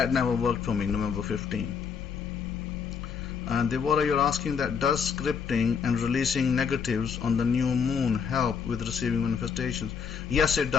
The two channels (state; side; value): quieter; right; 6.6 dB